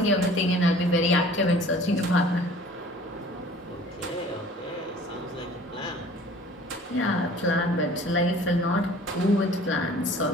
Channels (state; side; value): normal; both; correlation 0.48